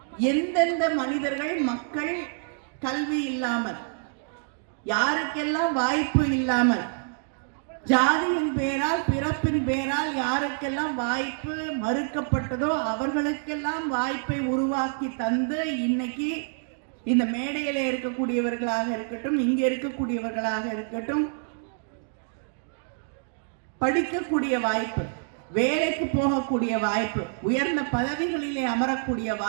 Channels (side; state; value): left; silent; digital silence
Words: எந்தெந்த மனிதர்கள், மக்கள் கல்வி இல்லாமல், யாருக்கெல்லாம் வாய்ப்பு இல்லாமல், ஜாதியின் பேரால், பிறப்பின் பேரால் யாருக்கெல்லாம் வாய்ப்பு மறுக்கப்பட்டதோ அவர்களுக்கெல்லாம் வாய்ப்பை உருவாக்கி தந்து இன்னைக்கு இந்த மேடையில இருக்கக்கூடியவர்களாக இருக்கட்டும், இங்க இருக்கக்கூடியவர்களாக இருக்கட்டும், படிக்கக்கூடிய வாய்ப்பு, வேலைக்கு போகக்கூடிய வாய்ப்பு, உயர்ந்த பதவிகளிலே அமரக்கூடிய